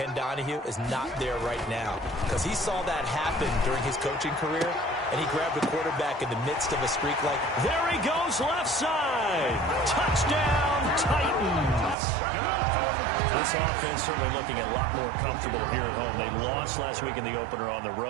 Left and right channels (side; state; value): left; drops out; at 12.0 s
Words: Donahue, is not there right now. Because he saw that happen during his coaching career, and he grabbed the quarterback in the midst of a streak like... There he goes, left side. Touchdown, Titans. This offense certainly looking a lot more comfortable here at home. They lost last week in the opener on the